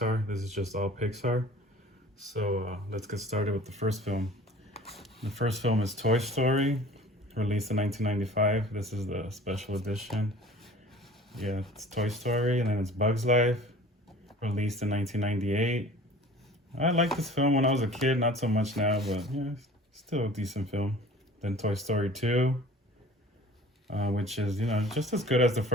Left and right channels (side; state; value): both; normal; correlation 0.45